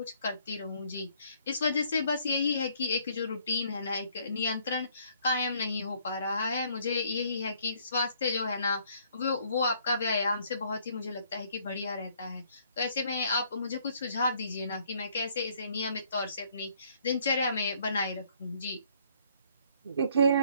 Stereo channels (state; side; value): inverted; both; correlation -0.64